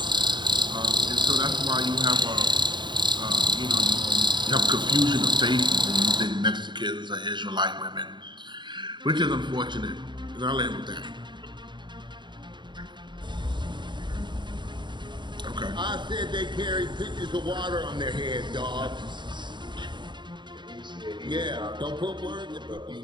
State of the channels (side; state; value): left; late; 0.22 ms